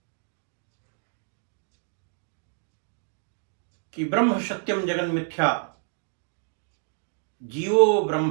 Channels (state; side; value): silent; left; digital silence